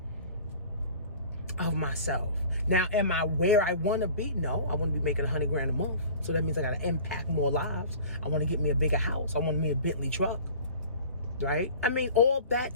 of myself. Now, am I where I want to be? No, I want to be making $100,000 a month. So that means I got to impact more lives. I want to get me a bigger house. I want me a Bentley truck, right? I mean, all that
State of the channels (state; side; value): inverted; both; correlation -0.43